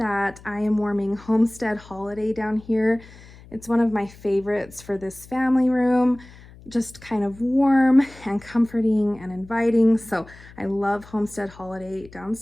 I am warming Homestead Holiday down here. It's one of my favorites for this family room, just kind of warm and comforting and inviting. So I love Homestead Holiday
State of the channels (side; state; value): left; noise; hum, 21 dB below the sound